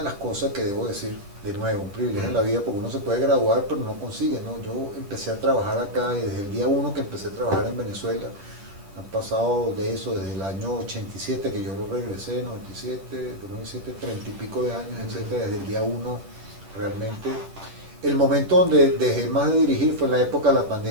las cosas que debo decir, de nuevo, un privilegio en la vida, porque uno se puede graduar pero no consigue, ¿no? Yo empecé a trabajar acá, y desde el día 1 que empecé a trabajar en Venezuela, han pasado de eso, desde el año 87 que yo regresé, 97, 2007, 30 y pico de años, etcétera, desde el día 1 realmente. El momento donde dejé más de dirigir fue en la época de la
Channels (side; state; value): left; late; 10 ms